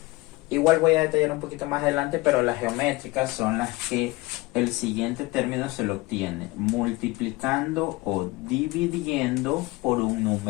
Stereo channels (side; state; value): right; quieter; 21.8 dB